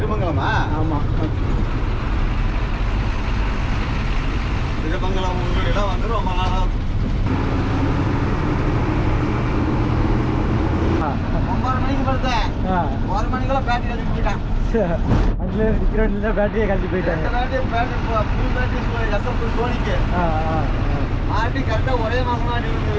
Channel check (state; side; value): identical; both; correlation 1.00